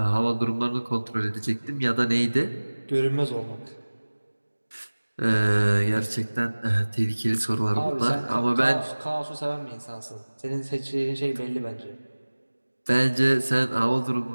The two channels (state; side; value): inverted; both; correlation -1.00